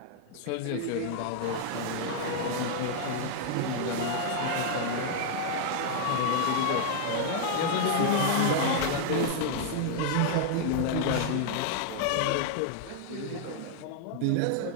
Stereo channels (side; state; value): both; different; correlation 0.00